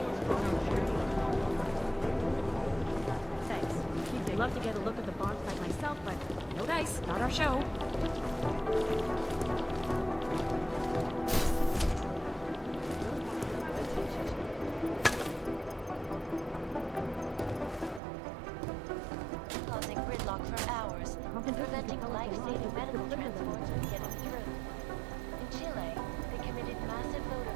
Thanks. I'd love to get a look at the bomb site myself, but no dice, not our show. Causing gridlock for hours, preventing life-saving medical transports from getting through. In Chile, they committed massive voter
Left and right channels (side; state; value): left; drops out; at 18.0 s